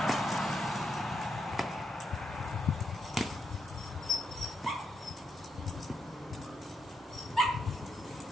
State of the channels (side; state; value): both; normal; correlation 0.80